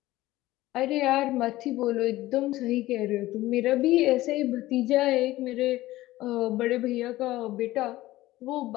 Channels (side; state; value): right; quieter; 16.8 dB